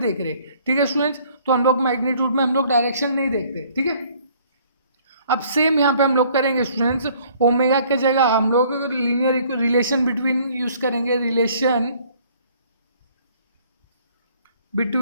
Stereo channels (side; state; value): both; inverted; correlation -0.59